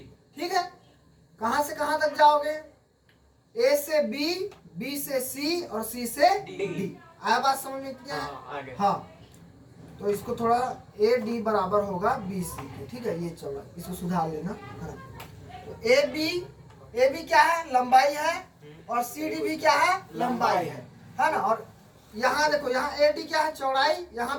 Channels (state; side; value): identical; both; correlation 1.00